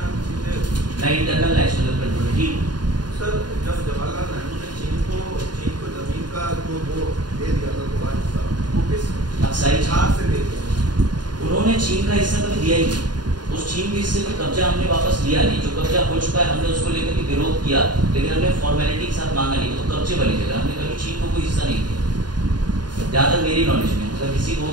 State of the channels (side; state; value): left; late; 0.70 ms